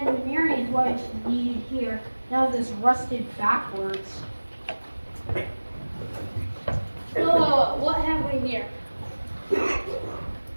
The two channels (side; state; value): both; inverted; correlation -1.00